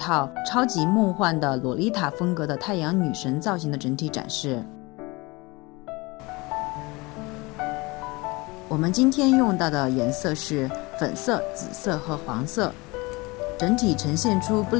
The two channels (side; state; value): right; quieter; 24.3 dB